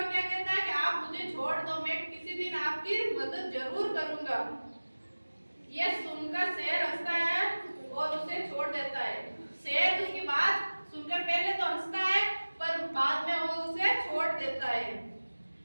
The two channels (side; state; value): both; inverted; correlation -1.00